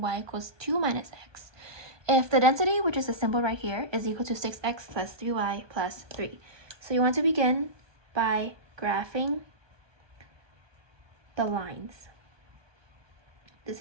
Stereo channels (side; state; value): left; late; 1.2 ms